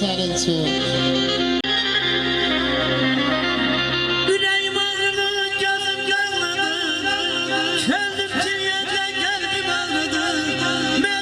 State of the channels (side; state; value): both; identical; correlation 1.00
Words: sənin üçün. Ürəyim ağrıdı, gözüm görmürdü. Könlüm ciğerlə qəlbim ağrıdı.